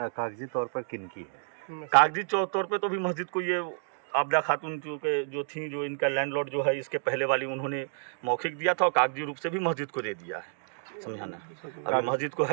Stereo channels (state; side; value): silent; left; digital silence